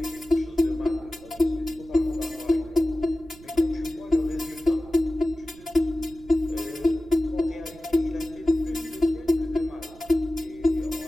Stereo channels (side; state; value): right; noise; rumble, 24 dB below the sound